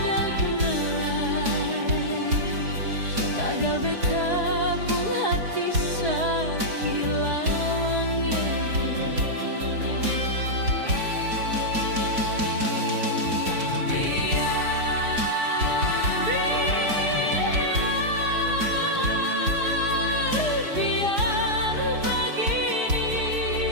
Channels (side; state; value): left; late; 4.8 ms